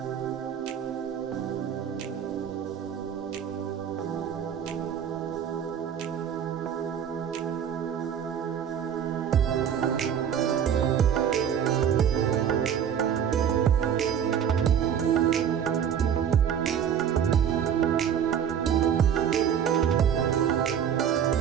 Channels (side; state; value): left; quieter; 8.6 dB